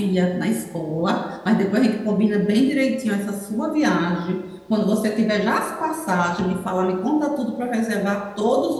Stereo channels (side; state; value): both; identical; correlation 1.00